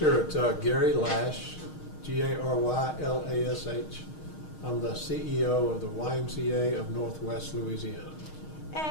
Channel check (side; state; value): right; late; 6.4 ms